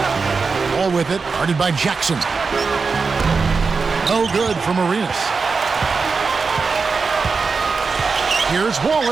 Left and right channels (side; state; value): left; quieter; 4.7 dB